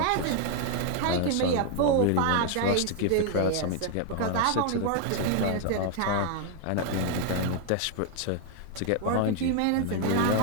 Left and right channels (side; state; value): both; different; correlation 0.01